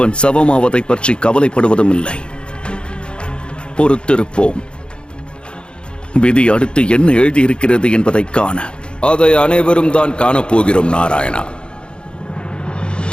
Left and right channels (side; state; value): right; late; 0.053 ms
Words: சவமாவதை பற்றி கவலைப்படுவதும் இல்லை. பொறுத்திருப்போம். விதி அடுத்து என்ன எழுதியிருக்கிறது என்பதை காண. அதை அனைவரும் தான் காணப்போகிறோம் நாராயணா.